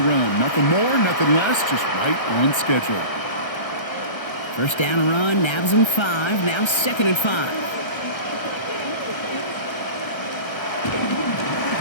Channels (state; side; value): late; right; 1.3 ms